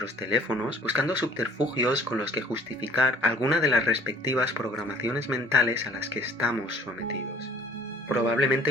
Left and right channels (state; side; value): normal; both; correlation 0.54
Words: teléfonos buscando subterfugios con los que justificar alguna de las respectivas programaciones mentales a las que estamos sometidos.